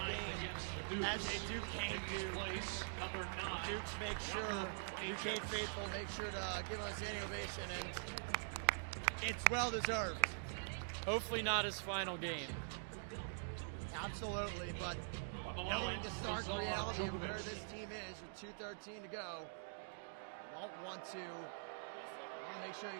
game as a Duquesne Duke. The Dukes make sure, the Duquesne faithful make sure to give him a standing ovation, and it's well deserved. Hopefully not his final game. Absolutely, but knowing the stark reality of where this team is with 2:13 to go, you don't want to, you want to make sure you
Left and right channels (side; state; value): left; silent; digital silence